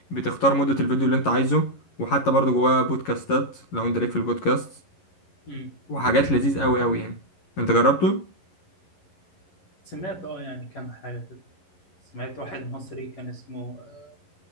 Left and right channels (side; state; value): right; late; 11 ms